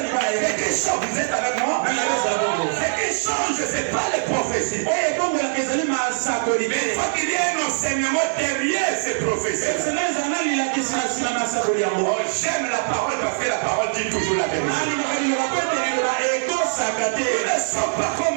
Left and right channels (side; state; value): left; silent; digital silence